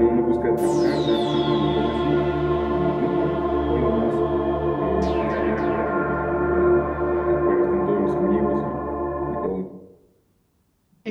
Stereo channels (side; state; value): both; identical; correlation 1.00